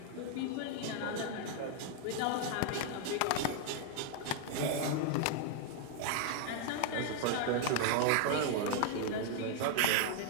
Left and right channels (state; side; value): different; both; correlation 0.00